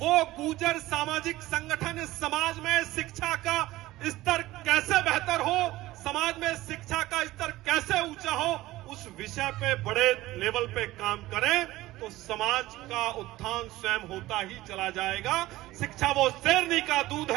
गुर्जर सामाजिक संगठन इस समाज में शिक्षा का स्तर कैसे बेहतर हो, समाज में शिक्षा का स्तर कैसे ऊंचा हो, उस विषय पे बड़े लेवल पे काम करें तो समाज का उत्थान स्वयं होता ही चला जाएगा। शिक्षा वो शेरनी का दूध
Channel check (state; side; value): quieter; left; 17.2 dB